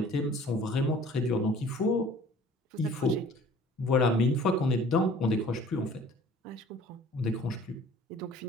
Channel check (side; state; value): both; normal; correlation 0.50